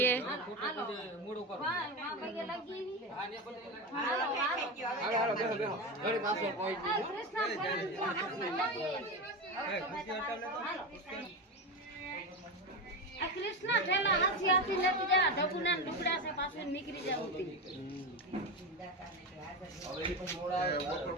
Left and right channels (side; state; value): both; normal; correlation 0.18